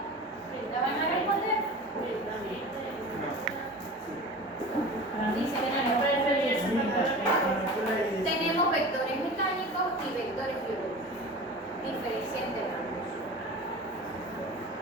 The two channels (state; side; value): normal; both; correlation 0.35